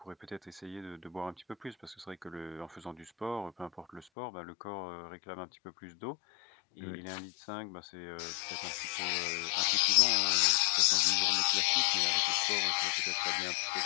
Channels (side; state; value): right; drops out; at 4.0 s